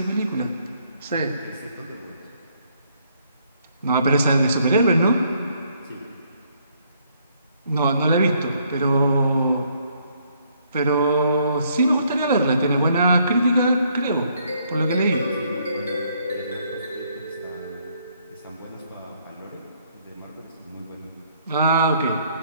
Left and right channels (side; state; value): both; inverted; correlation -0.68